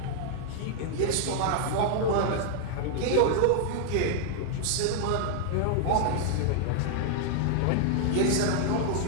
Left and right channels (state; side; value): different; both; correlation 0.00